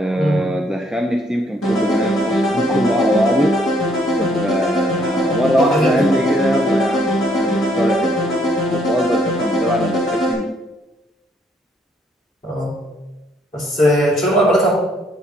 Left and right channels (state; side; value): normal; both; correlation 0.68